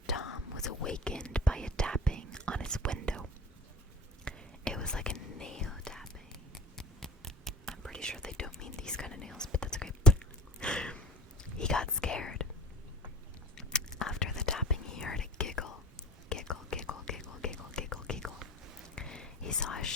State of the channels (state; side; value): normal; both; correlation 0.41